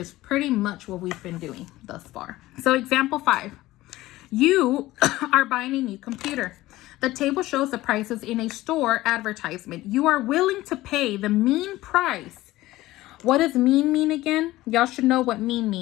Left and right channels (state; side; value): quieter; right; 17.2 dB